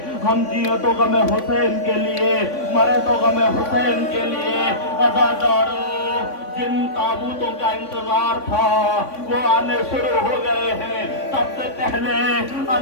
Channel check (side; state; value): right; late; 3.5 ms